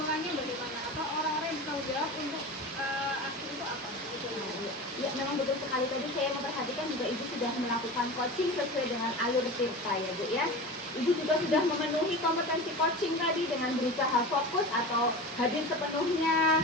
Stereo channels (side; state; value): both; normal; correlation 0.30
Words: bagaimana, atau orang-orang yang bertanggung jawab untuk aksi itu apa gitu. Ya, memang betul sekali. Tadi saya memperhatikan juga Ibu sudah melakukan coaching sesuai dengan alur Tirta ya Bu ya. Ibu juga sudah memenuhi kompetensi coaching tadi dengan berusaha fokus atau hadir sepenuhnya,